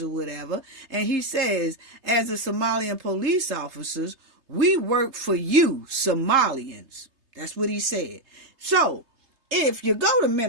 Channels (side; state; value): left; late; 3.3 ms